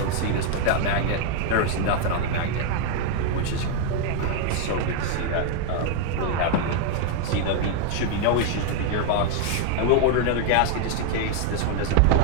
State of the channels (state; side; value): different; both; correlation 0.00